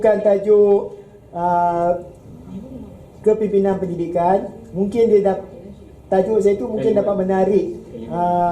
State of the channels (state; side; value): identical; both; correlation 1.00